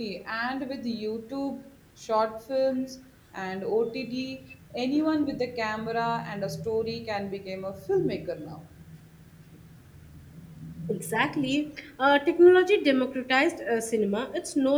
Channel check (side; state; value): both; identical; correlation 1.00